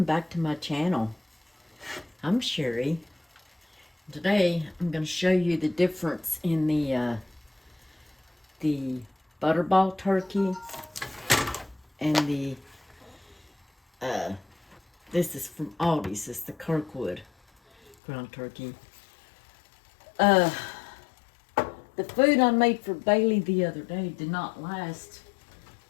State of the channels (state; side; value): drops out; right; at 17.9 s